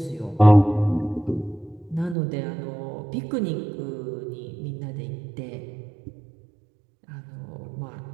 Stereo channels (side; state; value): left; drops out; at 2.1 s